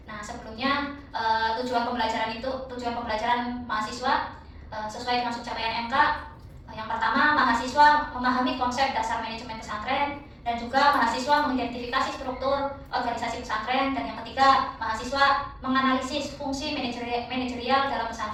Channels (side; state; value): both; identical; correlation 1.00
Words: Nah, sebelumnya tujuan pembelajaran mahasiswa sesuai dengan subcapaian MK. Yang pertama, mahasiswa memahami konsep dasar manajemen pesantren dan juga mahasiswa mengidentifikasi struktur organisasi pesantren, dan yang ketiga, mahasiswa menganalisis fungsi manajerial dalam